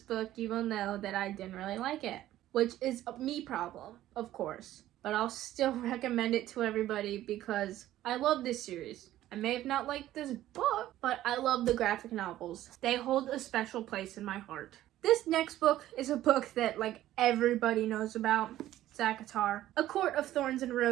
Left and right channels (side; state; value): left; quieter; 13.9 dB